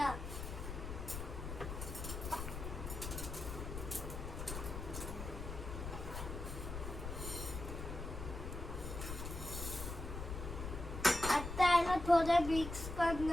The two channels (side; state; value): left; noise; rumble, 6 dB below the sound